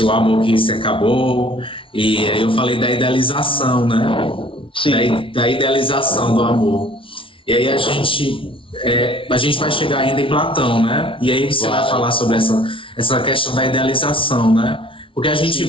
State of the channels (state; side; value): late; right; 0.25 ms